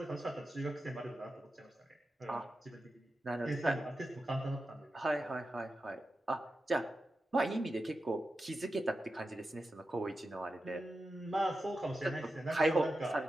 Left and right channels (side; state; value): both; normal; correlation 0.91